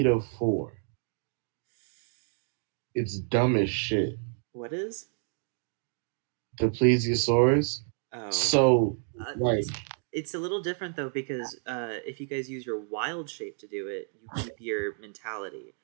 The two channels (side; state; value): left; silent; 58 dB below the other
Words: It's dumb as shit. What is? The plesiosaurus. Oh. So, like, it's a little different though because if you guys use your wild shape to do it, you keep your mentality.